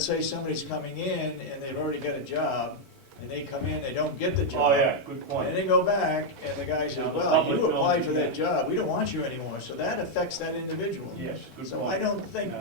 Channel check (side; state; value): both; normal; correlation -0.01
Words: say somebody's coming in and they've already got a job, and they come in, they don't get the job. Oh, yeah, good And point. they go back, and the guy says, Now, the well, public you applied knows for that you- job, we don't want you anymore, so that affects that individual. Yes, good point. So I don't think,